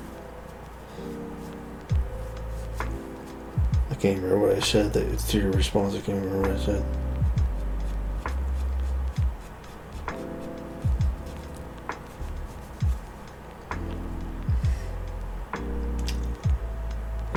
I can't remember what I said. It's to your response. I can't remember what I said.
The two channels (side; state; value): both; identical; correlation 1.00